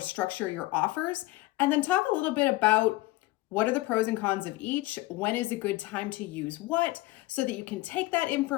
your offers, and then talk a little bit about what are the pros and cons of each, when is a good time to use what, so that you can take that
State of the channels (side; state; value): right; quieter; 19.3 dB